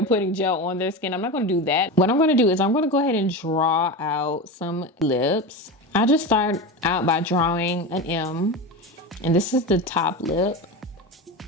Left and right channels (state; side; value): normal; both; correlation 0.23